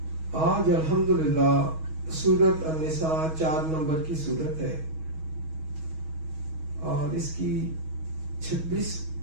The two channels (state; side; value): late; left; 6.3 ms